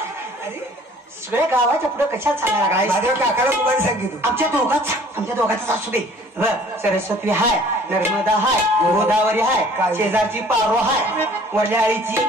सगळ्या गावाच्या पुढे कशात सांगायला लागलाय? माझ्या काकाला तुम्हाला सांगितलं. आमच्या दोघांच असू दे. सरस्वती हाय, नर्मदा हाय, गोदावरी हाय, शेजारची पारो हाय, वल्याळीची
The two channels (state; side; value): normal; both; correlation 0.53